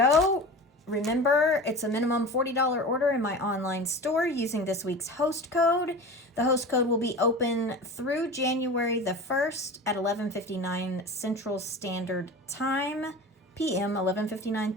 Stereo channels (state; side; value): normal; both; correlation 0.33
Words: remember it's a minimum $40 order in my online store using this week's host code. The host code will be open through January the 1st at 11:59 Central Standard Time, PM, 11:59